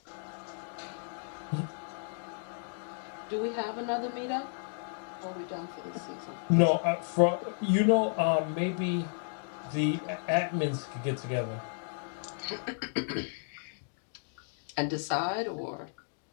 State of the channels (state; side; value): silent; right; digital silence